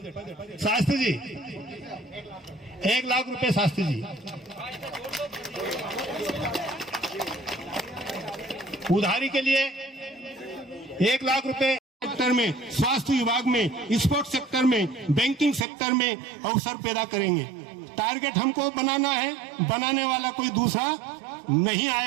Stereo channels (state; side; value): drops out; left; at 15.7 s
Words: शास्त्री जी 1 लाख रुपए, शास्त्री जी उधारी के लिए 1 लाख रुपए सेक्टर में, स्वास्थ्य विभाग में, स्पोर्ट्स सेक्टर में, बैंकिंग सेक्टर में अवसर पैदा करेंगे। टारगेट हमको बनाना है, बनाने वाला कोई दूसरा नहीं